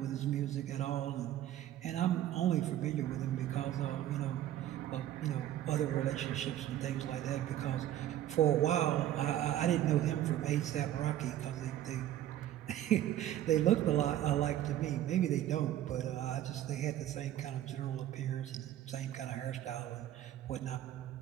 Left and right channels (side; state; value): left; quieter; 12.4 dB